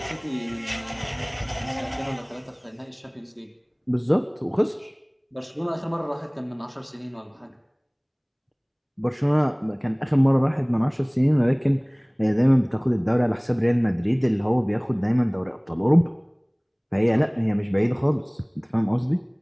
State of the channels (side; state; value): both; identical; correlation 1.00